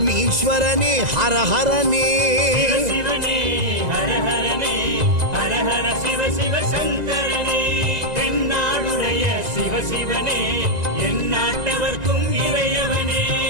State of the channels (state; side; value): late; left; 2.0 ms